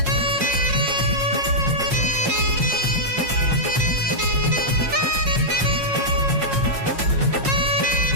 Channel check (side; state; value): left; late; 5.6 ms